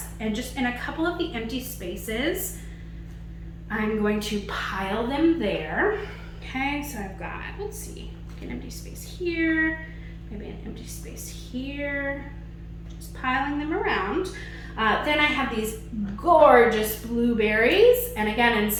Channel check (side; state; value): both; identical; correlation 1.00